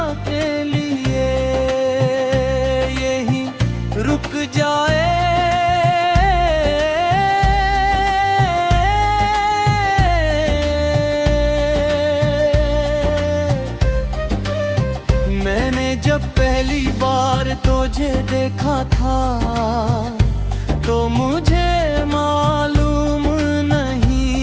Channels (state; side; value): identical; both; correlation 1.00